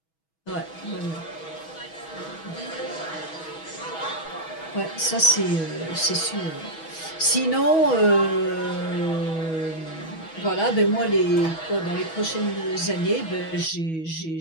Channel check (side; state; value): right; late; 6.2 ms